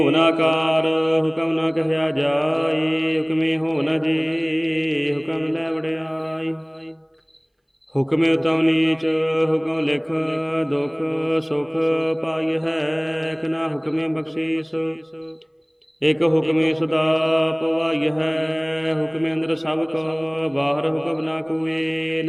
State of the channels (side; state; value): both; identical; correlation 1.00